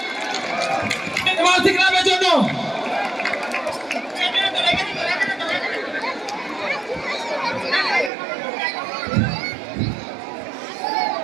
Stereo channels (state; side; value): drops out; left; at 8.1 s